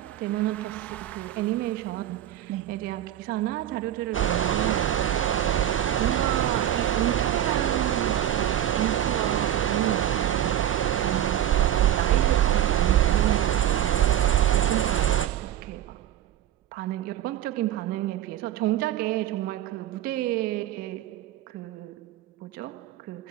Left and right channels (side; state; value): left; quieter; 11.6 dB